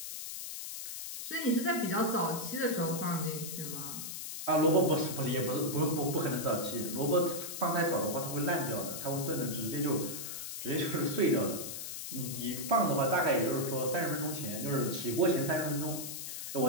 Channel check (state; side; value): noise; left; hiss, 7 dB below the sound